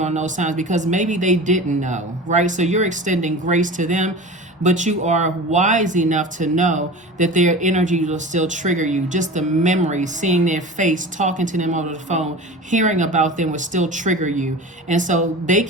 those times because maybe they didn't know, right? So you're extending grace to them, but you are wise enough to know that their energy will still trigger you. Just the memory, seeing their face, talking to them over the phone, hearing about them will still trigger you. And so they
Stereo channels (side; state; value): both; normal; correlation 0.33